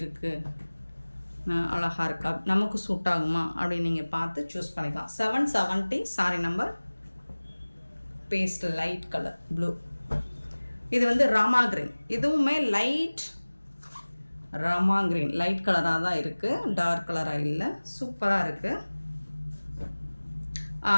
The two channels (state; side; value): inverted; both; correlation -1.00